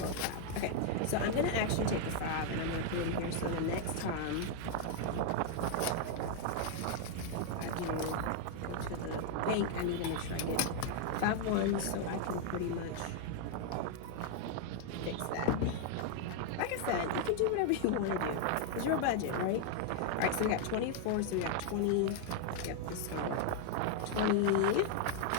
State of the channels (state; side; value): different; both; correlation 0.00